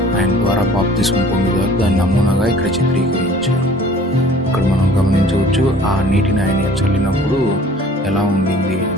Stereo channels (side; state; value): both; normal; correlation 0.50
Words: ఆయన ద్వారా బాప్తిస్మం పొందుతారు. దాని నమూనాగా ఇక్కడ చిత్రీకరించారు. ఇక్కడ మనం గమనించవచ్చు ఆ నీటిని ఆయన చల్లినప్పుడు ఎలా ఉండింది